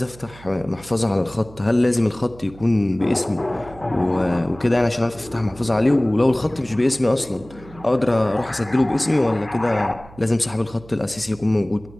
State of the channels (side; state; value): right; noise; hum, 20 dB below the sound